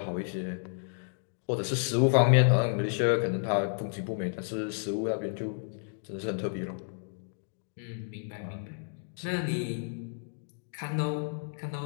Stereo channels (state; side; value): silent; right; digital silence